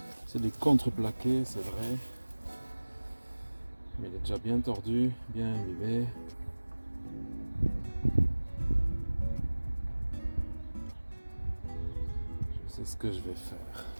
C'est du contreplaqué, c'est vrai. Mais il est déjà bien tordu, bien imbibé. Je sais ce que je vais faire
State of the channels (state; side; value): inverted; both; correlation -1.00